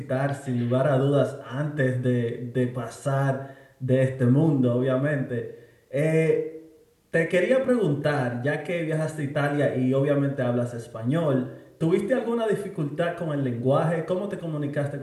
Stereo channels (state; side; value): identical; both; correlation 1.00